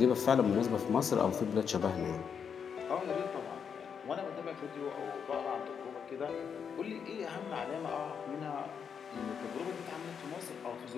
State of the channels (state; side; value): quieter; right; 7.0 dB